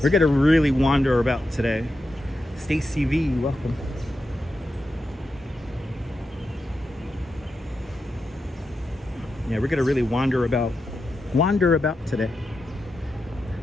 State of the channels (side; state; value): both; normal; correlation 0.88